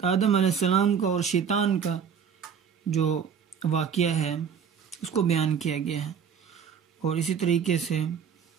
آدم علیہ السلام کا اور شیطان کا جو واقعہ ہے اس کو بیان کیا گیا ہے، اور اسی طریقے سے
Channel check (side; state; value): left; quieter; 7.3 dB